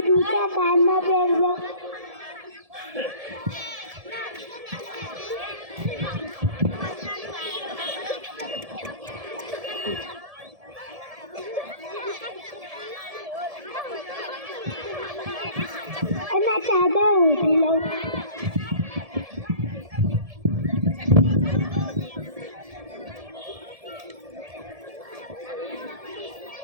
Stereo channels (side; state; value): left; late; 1.7 ms